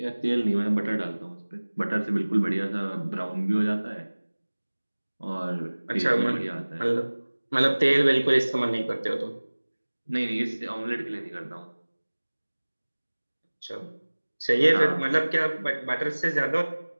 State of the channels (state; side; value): inverted; both; correlation -1.00